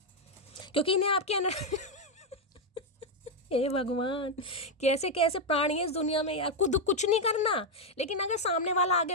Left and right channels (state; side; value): normal; both; correlation 0.02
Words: क्योंकि इन्हें आपके हे भगवान, कैसे कैसे प्राणी है इस दुनिया में यार। खुद कुछ नहीं करना, लेकिन अगर सामने वाला